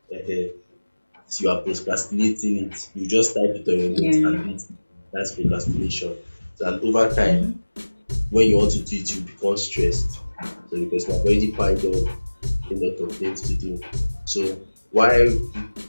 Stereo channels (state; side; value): inverted; both; correlation -1.00